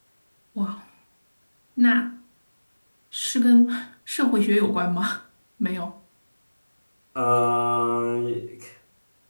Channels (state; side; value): inverted; both; correlation -1.00